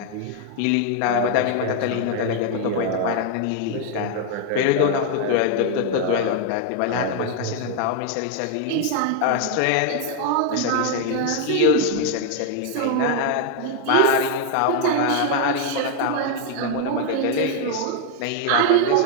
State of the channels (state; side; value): different; both; correlation 0.00